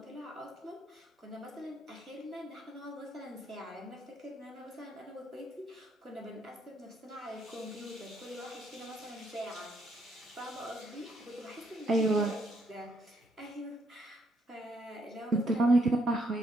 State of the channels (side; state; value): both; normal; correlation 0.73